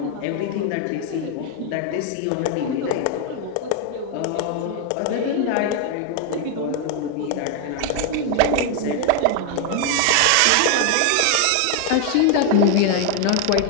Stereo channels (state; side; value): different; both; correlation 0.00